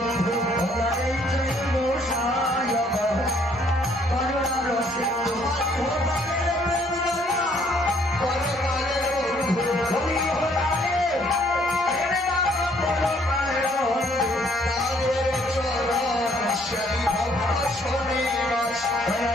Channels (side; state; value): both; normal; correlation 0.64